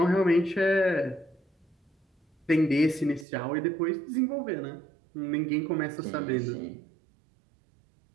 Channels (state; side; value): drops out; left; at 3.2 s